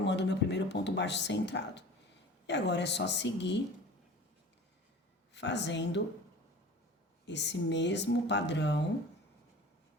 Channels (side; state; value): both; normal; correlation 0.40